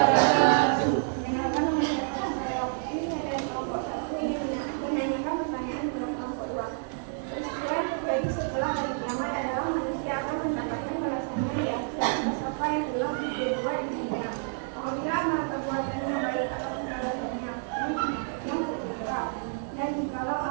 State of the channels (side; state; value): left; silent; 58 dB below the other